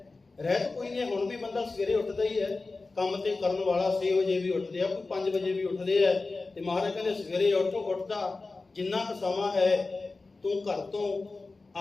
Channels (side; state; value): right; quieter; 3.7 dB